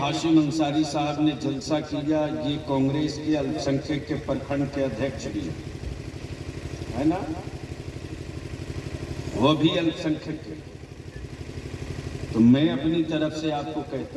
ہاشم انصاری صاحب نے جلسہ کیا، یہ کانگریس کے الپ سنکھیک کے پرکھنڈ کے ادھیکش بھی ہے نا، وہ بھی الپ سنکھیک کے، تو میں اپنی طرف سے آپ کو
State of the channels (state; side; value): identical; both; correlation 1.00